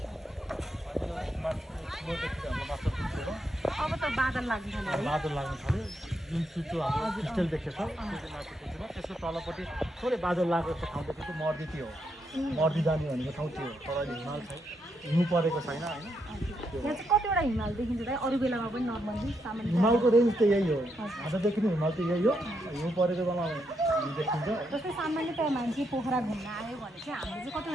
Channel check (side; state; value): both; normal; correlation 0.80